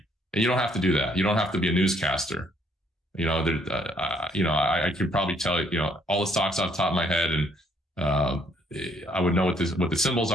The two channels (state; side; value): normal; both; correlation 0.66